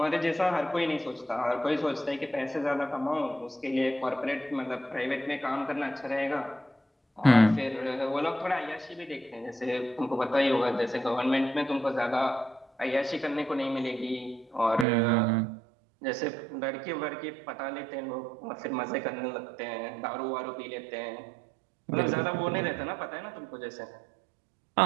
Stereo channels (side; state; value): left; drops out; at 14.9 s